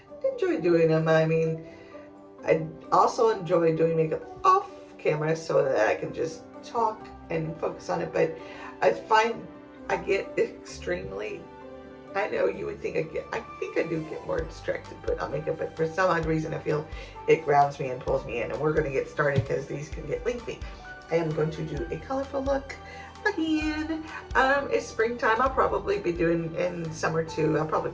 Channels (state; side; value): identical; both; correlation 1.00